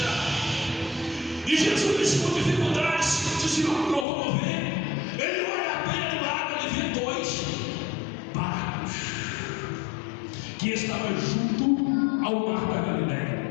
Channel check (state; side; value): drops out; right; at 4.0 s